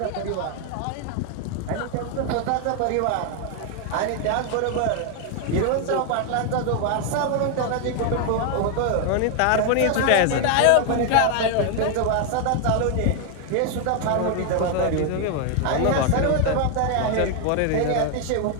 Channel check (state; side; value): different; both; correlation 0.01